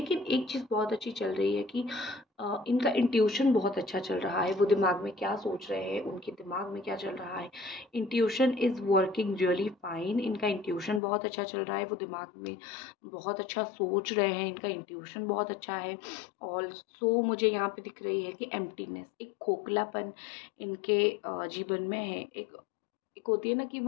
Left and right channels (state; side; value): drops out; right; at 11.0 s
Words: एक चीज़ बहुत अच्छी चल रही है कि इनका इंट्यूशन बहुत अच्छा चल रहा है। वो दिमाग में क्या सोच रहे हैं, उनके दिमाग में क्या चल रहा है, intuition is working really fine. इनका इंट्यूशन बहुत अच्छा चल रहा है, वो दिमाग में बहुत अच्छा सोच रहे हैं, इनका इंट्यूशन बहुत अच्छा है। ऑल्सो मुझे यहाँ पे दिख रही है कि एम्प्टीनेस, एक खोखलापन इनके जीवन में है। एक होती है ना कि